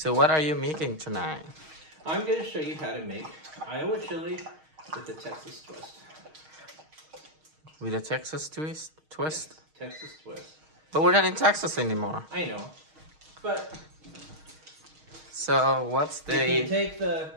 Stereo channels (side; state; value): left; late; 6.4 ms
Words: So what are you making tonight? I'm going to show you how to make Iowa chili with the Texas twist. With a Texas twist? Yes, Texas twist. But we're not in Texas anymore. I know, but So what's you can the... take the